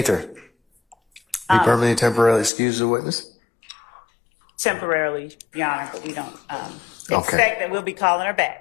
Be permanently or temporarily excused as a witness? Temporarily, Your Honor, but we don't Okay. expect that we'll be calling her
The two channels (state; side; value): drops out; right; at 2.5 s